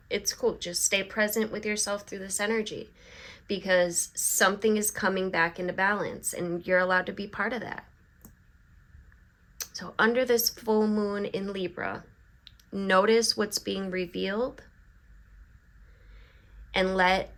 it's cool. Just stay present with yourself through this energy, because something is coming back into balance and you're allowed to be part of that. So under this full moon in Libra, notice what's being revealed and let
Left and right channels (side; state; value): both; identical; correlation 1.00